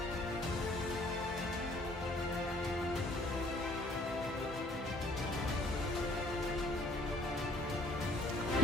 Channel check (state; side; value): normal; both; correlation 0.56